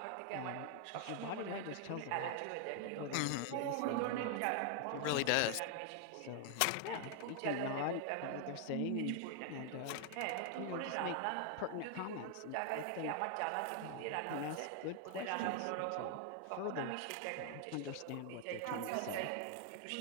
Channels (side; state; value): both; different; correlation 0.00